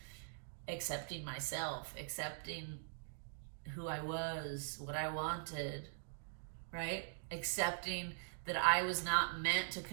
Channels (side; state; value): left; silent; digital silence